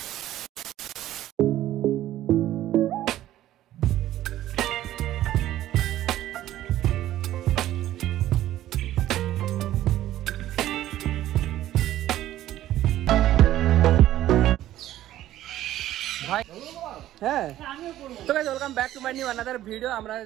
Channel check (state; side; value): quieter; left; 13.5 dB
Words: ভাই হ্যাঁ, তো guys welcome back to my new another video. আমরা